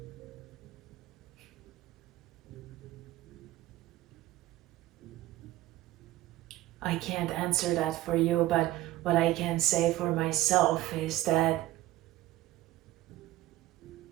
I can't answer that for you, but what I can say for myself is that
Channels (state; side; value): quieter; left; 16.0 dB